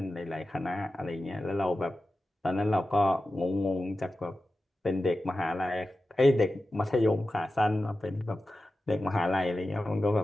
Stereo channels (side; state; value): both; normal; correlation 0.93